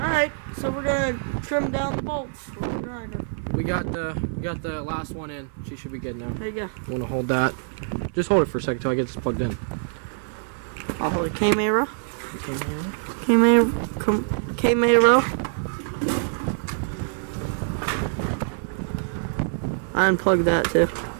so we're gonna trim down the bolts with the grinder. We got the last one in. She should be good now. There you go. You wanna hold that? Just hold it for a second till I get this plugged in. I'll hold it. Camera. I unplugged that too.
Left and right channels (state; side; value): silent; left; 56 dB below the other